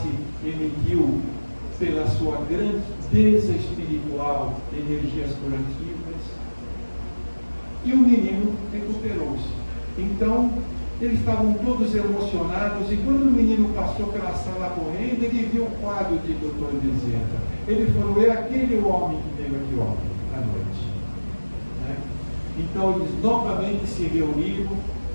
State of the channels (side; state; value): both; inverted; correlation -1.00